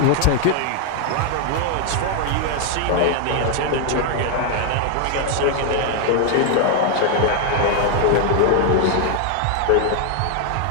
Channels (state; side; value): different; both; correlation 0.00